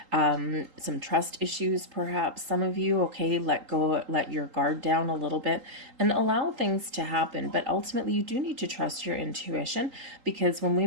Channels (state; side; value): late; left; 3.8 ms